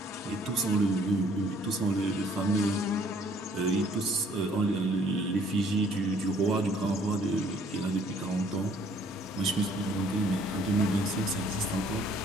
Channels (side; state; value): both; normal; correlation 0.60